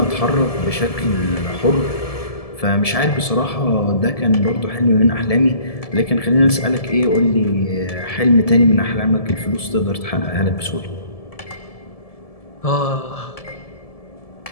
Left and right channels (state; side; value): late; right; 1.7 ms